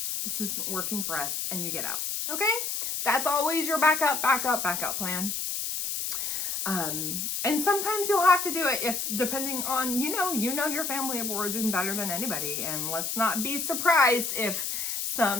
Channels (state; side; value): noise; left; hiss, 2 dB below the sound